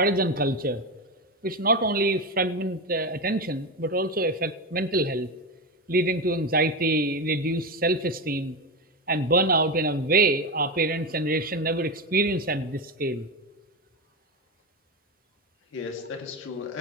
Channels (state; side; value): normal; both; correlation 0.16